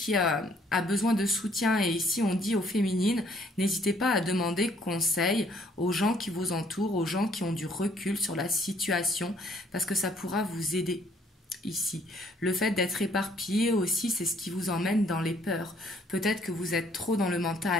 a besoin de soutien et ici on dit aux féminines, n'hésitez pas à demander conseil aux gens qui vous entourent, aux gens qui ont du recul sur la situation parce que ça pourra vous aider. Ici, le fait d'être éparpillé aussi, c'est ce qui vous emmène dans les peurs. Peut-être que vous êtes trop dans le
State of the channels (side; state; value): both; normal; correlation 0.64